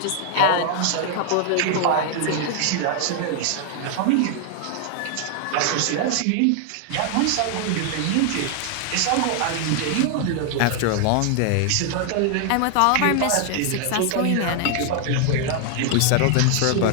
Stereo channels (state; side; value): different; both; correlation 0.00